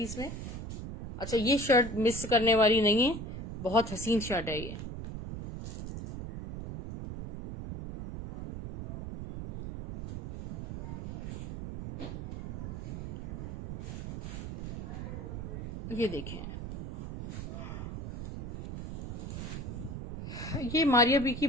में। अच्छा, ये शर्ट मिस करने वाली नहीं है, बहुत हसीन शर्ट है ये। ये देखें, ये मारिया बी की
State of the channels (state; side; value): noise; right; rumble, 7 dB below the sound